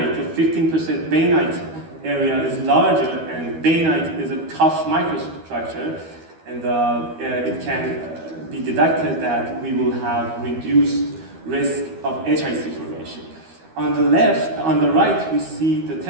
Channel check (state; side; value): late; left; 12 ms